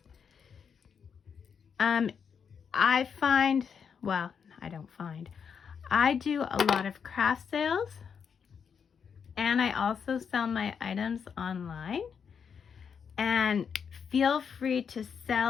I find, well, I don't find, I do a lot of craft sales, and I also sell my items online. And feel free to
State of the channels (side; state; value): right; quieter; 6.8 dB